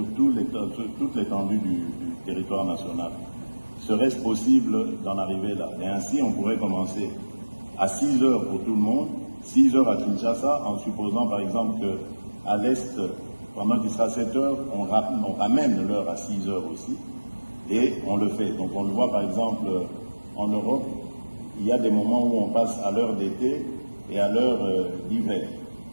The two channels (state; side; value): inverted; both; correlation -1.00